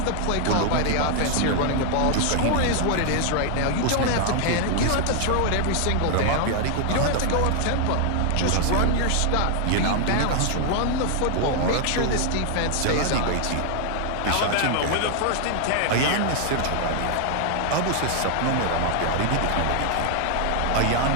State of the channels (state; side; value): different; both; correlation 0.00